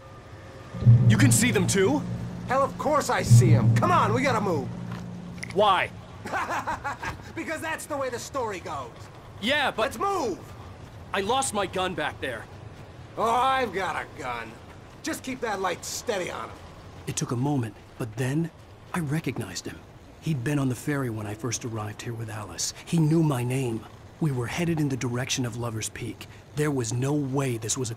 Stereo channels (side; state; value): both; identical; correlation 1.00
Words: You can see them too? Hell, of course I see them. Come on, we gotta move. Why? Because that's the way the story goes. Yeah, but... Let's move! I lost my gun back there. Oh, I've got a gun. Just keep that light steady on him. It took a moment, but then I recognized him. He'd been on the ferry when I first arrived here with Alice. He knew my name. We were headed in the direction of Lover's Peak. There was no way this was a